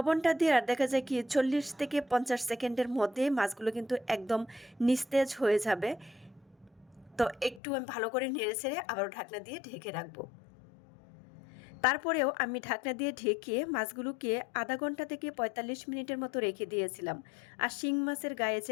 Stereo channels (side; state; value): right; drops out; at 7.6 s